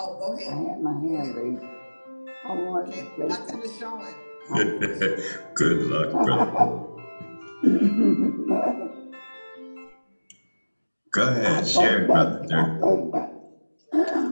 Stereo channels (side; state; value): both; inverted; correlation -1.00